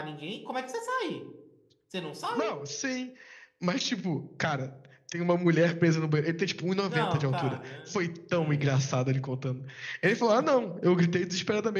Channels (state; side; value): identical; both; correlation 1.00